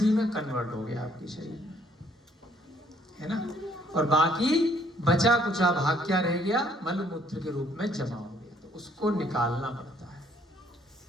में कन्वर्ट हो गया आपके शरीर में, है ना, और बाकी बचा कुचा भाग क्या रह गया? मल मूत्र के रूप में जमा हो गया। तो उसको निकालना पड़ता है,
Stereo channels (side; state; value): both; normal; correlation 0.64